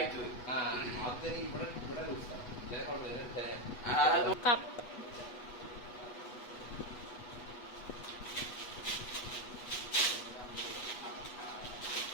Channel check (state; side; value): late; right; 8.2 ms